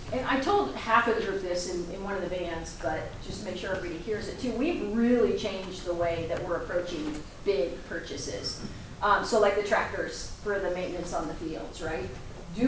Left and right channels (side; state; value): both; identical; correlation 1.00